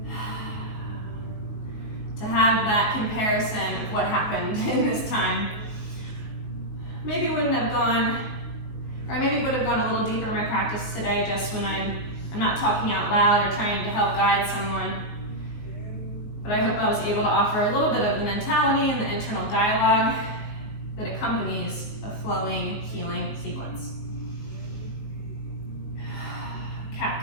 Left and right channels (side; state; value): right; late; 19 ms